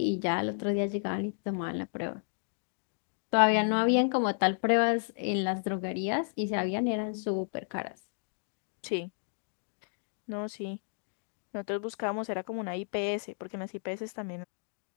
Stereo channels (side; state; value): right; silent; digital silence